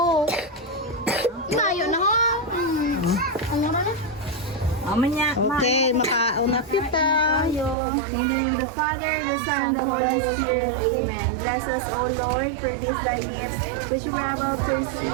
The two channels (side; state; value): left; drops out; at 7.8 s